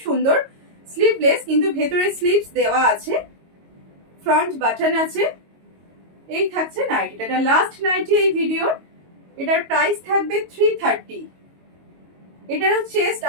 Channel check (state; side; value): late; left; 22 ms